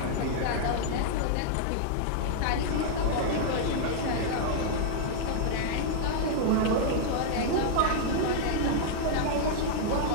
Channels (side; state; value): both; different; correlation -0.01